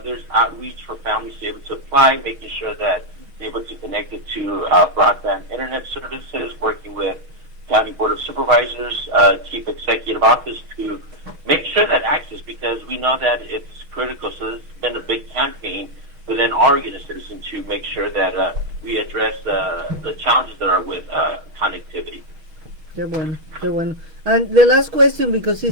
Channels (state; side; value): late; left; 6.3 ms